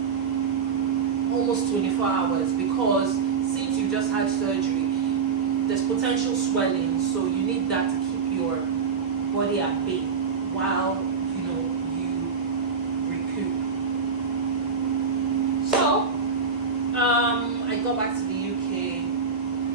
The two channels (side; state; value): left; quieter; 5.6 dB